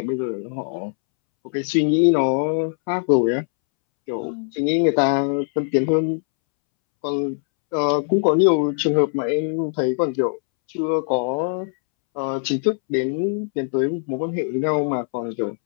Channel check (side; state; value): right; silent; 65 dB below the other